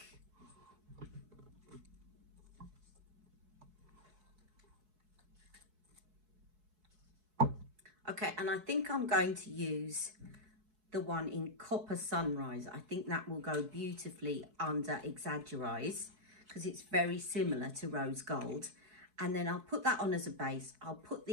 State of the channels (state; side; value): late; left; 4.7 ms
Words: Okay, and I think I'm going to use the one in Copper Sunrise. I think that will go beautifully under Exaggerase because it's very similar to Rose Gold. And then I'll put that on as a base. I'll put